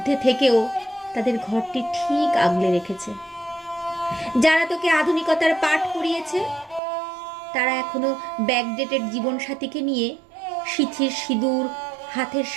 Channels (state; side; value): drops out; left; at 6.8 s